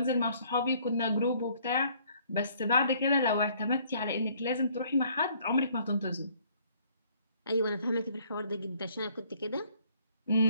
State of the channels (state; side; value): inverted; both; correlation -0.61